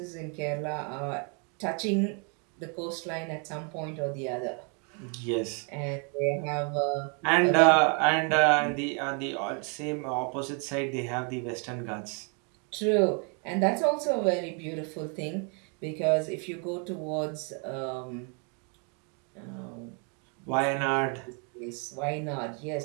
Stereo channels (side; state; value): left; quieter; 37.1 dB